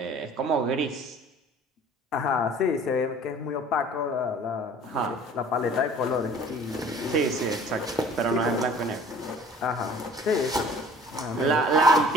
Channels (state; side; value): normal; both; correlation 0.49